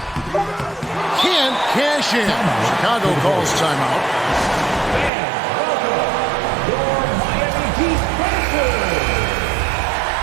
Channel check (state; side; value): drops out; left; at 5.1 s